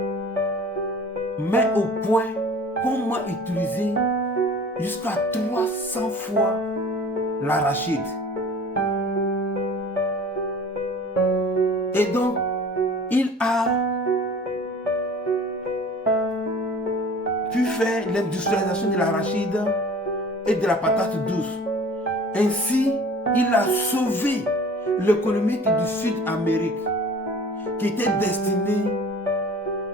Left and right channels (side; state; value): both; normal; correlation 0.45